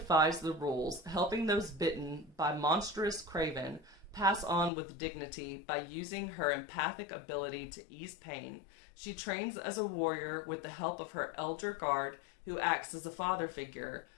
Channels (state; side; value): drops out; right; at 4.7 s